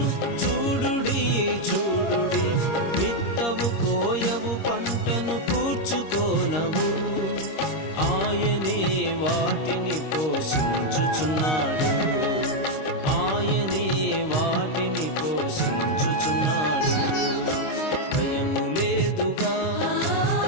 చూడుడి చూడుడి, విత్తవు కోయవు పంటను కూర్చుకోనవు. ఆయనే వాటిని పోషించుచున్నాడు, ఆయనే వాటిని పోషించుచున్నాడు. భయము లేదుగా,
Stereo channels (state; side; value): late; right; 26 ms